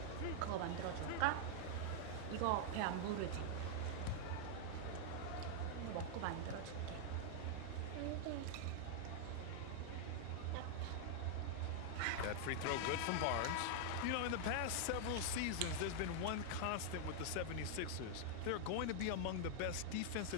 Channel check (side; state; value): both; different; correlation -0.01